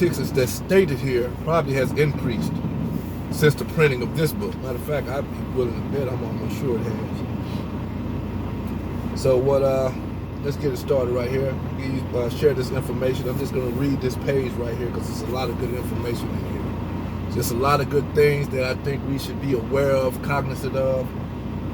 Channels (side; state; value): both; identical; correlation 1.00